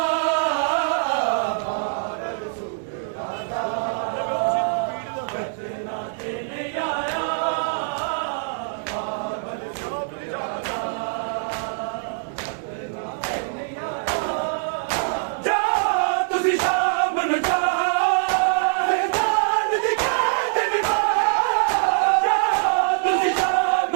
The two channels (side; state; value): left; silent; 62 dB below the other